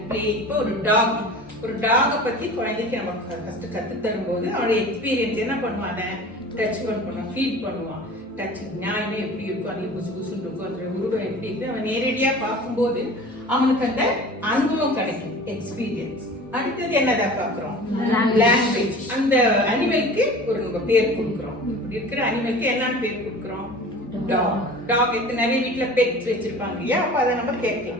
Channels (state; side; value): normal; both; correlation 0.40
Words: playing. இப்போ ஒரு டாக பத்தி குழந்தைக்கு நம்ம ஃபர்ஸ்ட் கத்து தரும்போது அவனுடைய எக்ஸ்பீரியன்ஸ் என்ன பண்ணுவான்? டச் பண்ணுவான், ஃபீல் பண்ணுவான். டச் நியாயமே எப்படி இருக்கும், அது புசு புசுன்னு இருக்கும், அதோட உருவம் எப்படி இருக்கு, அவன் நேரடியா பார்க்கும்போது அவனுக்கு அந்த அனுபவம் கிடைக்கும், எக்ஸ்பீரியன்ஸ். அடுத்தது என்னதான் பாக்குறோம்? லாங்குவேஜ். அந்த அனிமலுக்கு ஒரு நம்ம பேர் கொடுக்குறோம். இப்படி இருக்கிற அனிமலுக்கு என்னன்னு பேர் கொடுக்குறோம்? டாக். நிறைய வீட்டுல பெட்ஸ் வச்சிருப்பாங்க இல்லையா? அப்ப அதை நம்ம